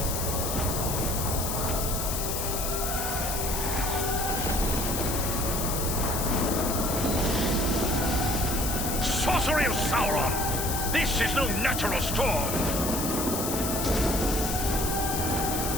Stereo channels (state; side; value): noise; left; hiss, 3 dB below the sound